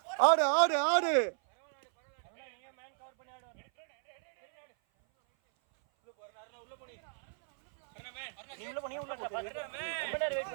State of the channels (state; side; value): silent; left; 55 dB below the other